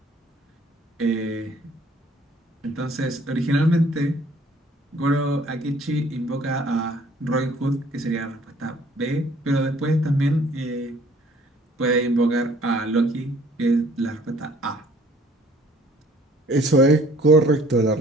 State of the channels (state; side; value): normal; both; correlation 0.57